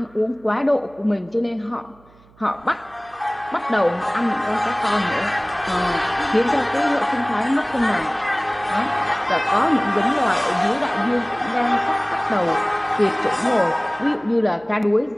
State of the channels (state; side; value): noise; right; hum, 28 dB below the sound